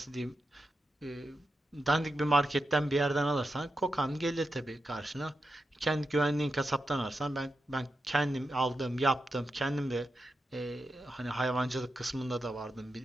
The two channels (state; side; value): normal; both; correlation 0.88